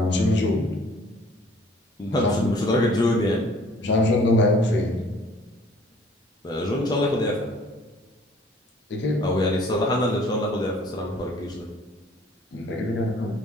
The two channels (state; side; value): normal; both; correlation 0.55